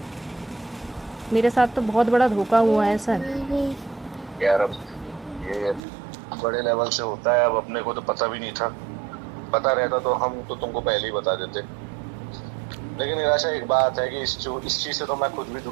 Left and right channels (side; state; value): left; drops out; at 5.8 s